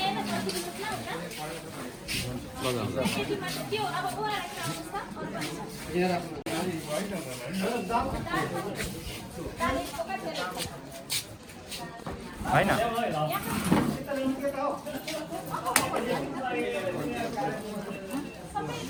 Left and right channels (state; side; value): identical; both; correlation 1.00